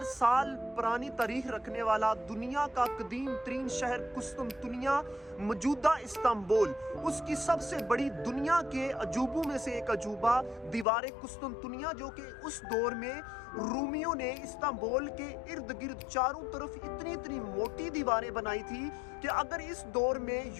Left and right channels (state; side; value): drops out; right; at 10.9 s